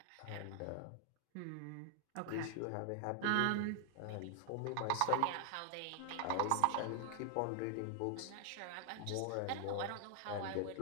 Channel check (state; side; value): different; both; correlation 0.00